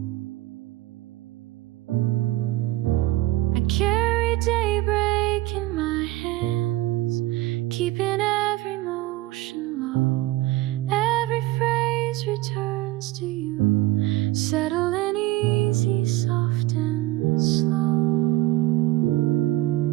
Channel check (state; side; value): quieter; left; 17.5 dB